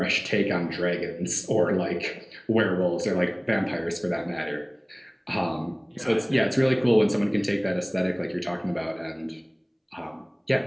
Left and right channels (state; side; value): identical; both; correlation 1.00